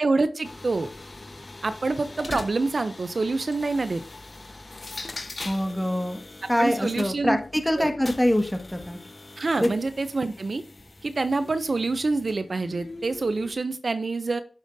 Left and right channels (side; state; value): both; normal; correlation 0.97